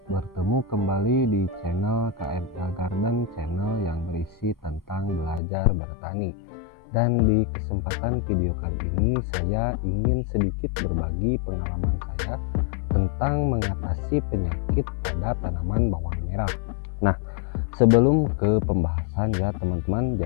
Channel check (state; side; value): drops out; right; at 5.4 s